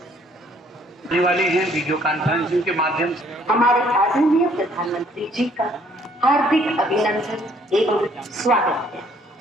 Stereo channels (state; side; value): normal; both; correlation 0.62